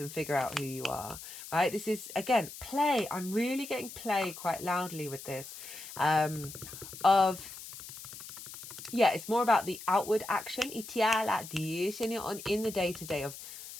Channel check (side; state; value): left; noise; hiss, 13 dB below the sound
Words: figure out who you are, right? This is, again, play. I'm really getting play quite loudly with this. It's more about the outward action. In the day-to-day of,